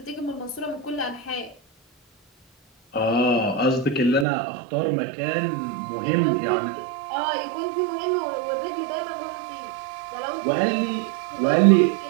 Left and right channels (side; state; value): left; drops out; at 4.2 s